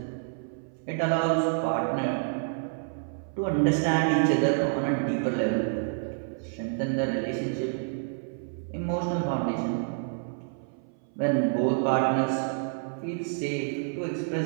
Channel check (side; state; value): left; silent; 59 dB below the other